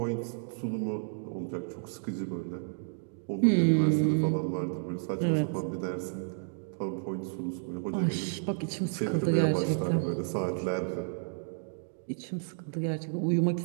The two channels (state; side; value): silent; left; digital silence